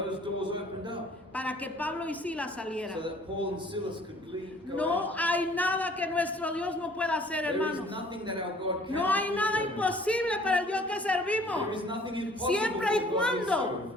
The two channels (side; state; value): both; normal; correlation 0.55